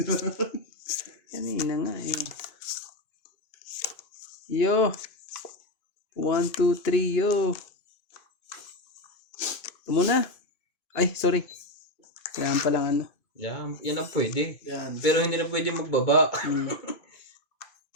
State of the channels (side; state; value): right; late; 2.5 ms